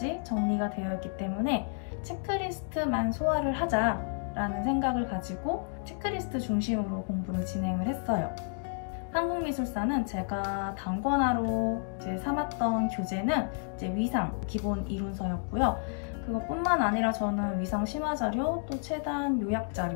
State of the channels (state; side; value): silent; right; 57 dB below the other